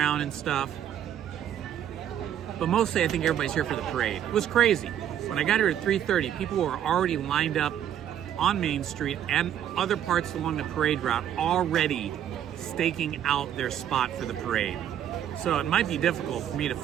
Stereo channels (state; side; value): quieter; left; 10.3 dB